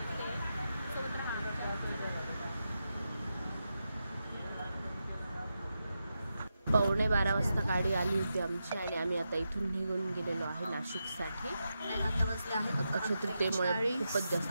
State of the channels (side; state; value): both; inverted; correlation -0.88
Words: सोबत राहणार. 11:15 वाजता गाडी आली होती आमची आणि आम्ही आता इथून निघून गेलेलो आहे नाशिकसाठी. अक्षय तृतीयेमुळे खूपच